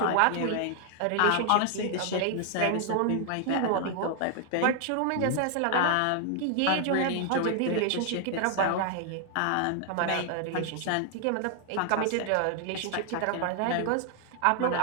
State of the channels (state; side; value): different; both; correlation 0.00